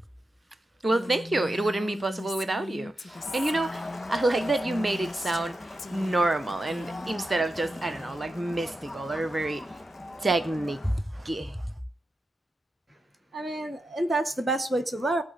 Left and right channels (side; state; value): both; normal; correlation 0.89